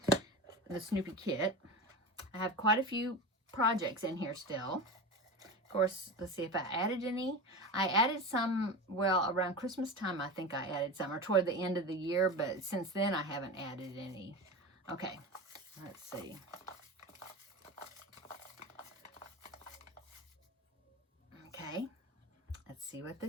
the Snoopy kit. I have quite a few projects in here still. Of course, let's see if I added any. I added some, well, around Christmas time, I think I added some, or toward the end of the year, but since then I haven't added any. Okay, let's see. Okay, let's see what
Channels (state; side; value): normal; both; correlation 0.26